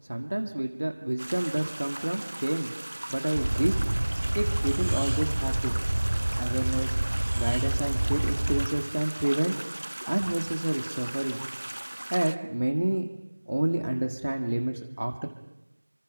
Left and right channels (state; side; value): inverted; both; correlation -1.00